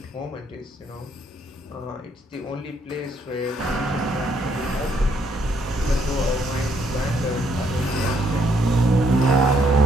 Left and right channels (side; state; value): both; normal; correlation 0.71